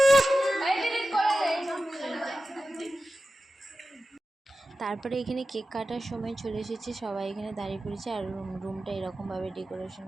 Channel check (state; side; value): normal; both; correlation 0.93